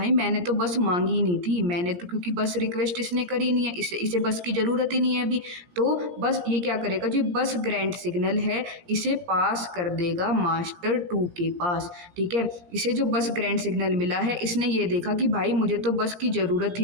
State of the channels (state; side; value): late; left; 17 ms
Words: मैंने तो बस मांगी ही नहीं थी, मैंने तो, क्योंकि बस रिक्वेस्ट इसने करी नहीं है, इसे बस की ज़रूरत ही नहीं है अभी। तो बस ये क्या करेगा, जो बस ग्रांट सिग्नल है इसे पास कर देगा मास्टर 2 के पास। ठीक है, इसे जो बस ग्रांट सिग्नल मिला है इसने ये देखा कि भाई मुझे तो बस की ज़रूरत